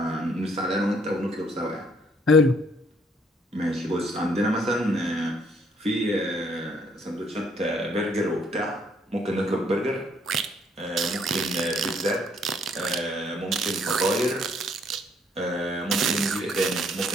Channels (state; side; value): normal; both; correlation 0.66